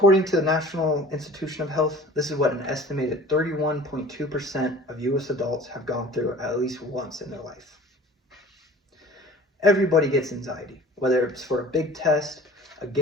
to the National Institution of Health, this is what an estimated 31.2% of US adults have gone through at least once in their life. Everybody gets anxiety, whether it's for a big test, a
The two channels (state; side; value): normal; both; correlation 0.45